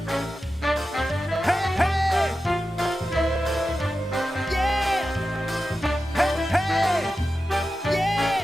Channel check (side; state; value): both; normal; correlation 0.92